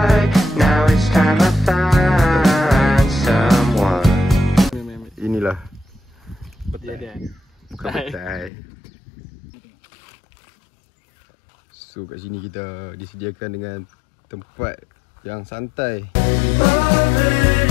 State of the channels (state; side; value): drops out; right; at 8.5 s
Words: Now it's time I find someone. Inilah. Petai dia. Bukan petai. So kat sini kita disediakan dengan tempat yang santai. Lover